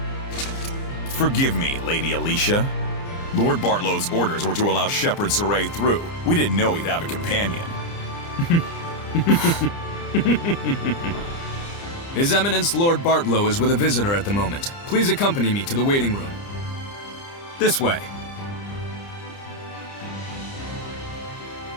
Forgive me, Lady Alicia. Lord Bartlow's orders were to allow Shepherd Saray through. We didn't know he'd have a companion. His Eminence Lord Bartlow is with a visitor at the moment. Please accompany me to the waiting room. This way.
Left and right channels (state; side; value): late; right; 30 ms